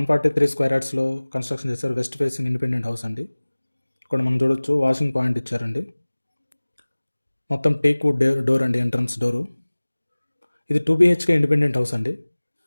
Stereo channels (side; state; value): both; inverted; correlation -1.00